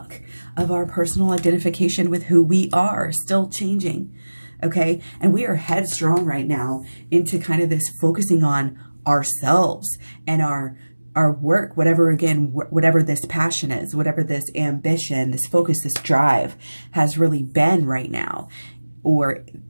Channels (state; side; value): inverted; both; correlation -1.00